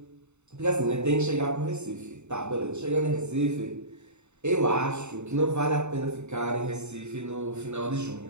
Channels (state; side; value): late; left; 0.82 ms